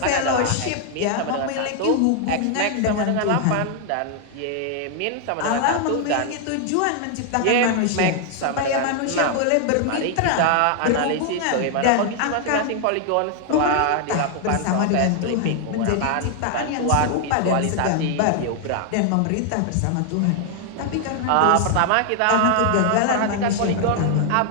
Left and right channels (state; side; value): different; both; correlation 0.00